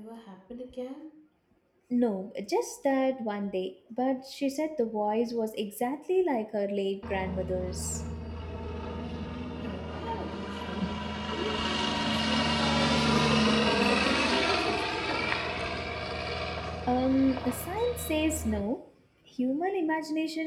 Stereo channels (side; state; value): both; identical; correlation 1.00